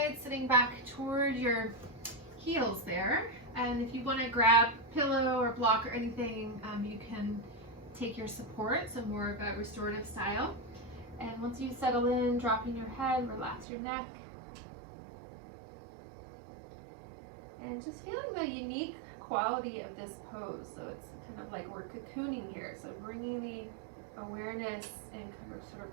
sitting back toward your heels there. And if you want to grab pillow or block or anything, you can take your support, so more of a restorative style. And once you settle in, dropping your head, relax your neck. And just feeling the unique quality of this pose. So it's kind of like we're cocooning here. So bringing the awareness and sort of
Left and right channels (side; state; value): left; drops out; at 13.7 s